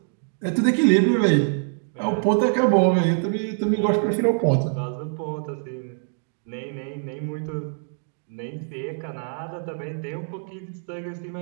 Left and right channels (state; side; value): silent; left; digital silence